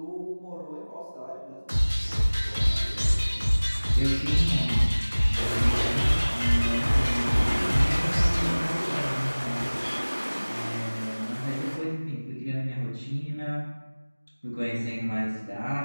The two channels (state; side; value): inverted; both; correlation -1.00